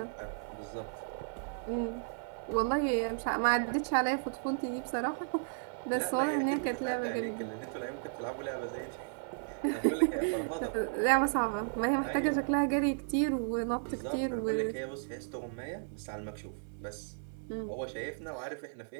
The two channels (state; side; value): silent; left; 55 dB below the other